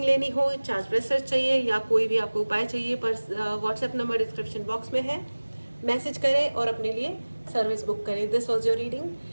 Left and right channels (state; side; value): inverted; both; correlation -1.00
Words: लेनी हो, चार्ज ब्रेसलेट चाहिए, या कोई भी आपको उपाय चाहिए, पर व्हाट्सएप नंबर डिस्क्रिप्शन बॉक्स में है। मैसेज करें और अपने लिए सर्विस बुक करें। This was your reading.